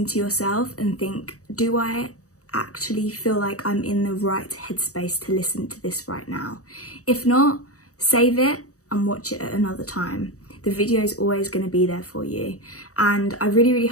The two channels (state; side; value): late; right; 0.66 ms